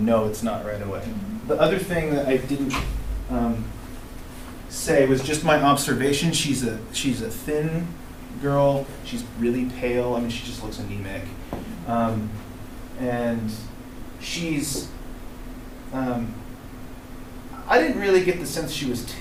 know it's not right away. The other thing that I didn't say was just my observation. She's a thin girl. She's really pale. I mean, she just looks anemic, and she's. I didn't really get the sense she was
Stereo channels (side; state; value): both; identical; correlation 1.00